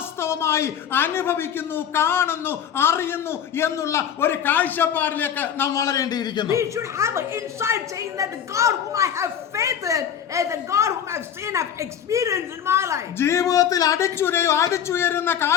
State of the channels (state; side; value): quieter; right; 8.8 dB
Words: അനുഭവിക്കുന്നു, കാണുന്നു, അറിയുന്നു എന്നുള്ള ഒരു കാഴ്ചപ്പാടിലേക്ക് നാം വളരേണ്ടിയിരിക്കുന്നു. we should have an insight saying that the God whom I have faith in is the God whom I've seen, I've experienced in my life. life. ജീവിതത്തിൽ അടിച്ചുയരുന്ന